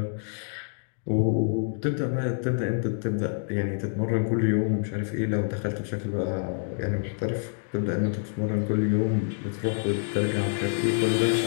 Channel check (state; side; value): silent; right; digital silence